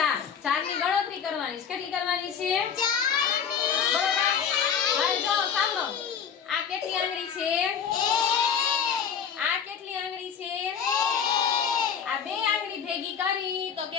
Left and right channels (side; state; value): right; quieter; 7.4 dB